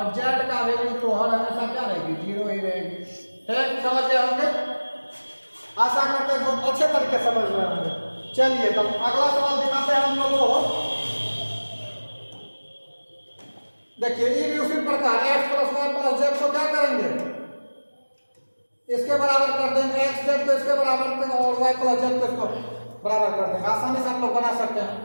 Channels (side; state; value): both; inverted; correlation -1.00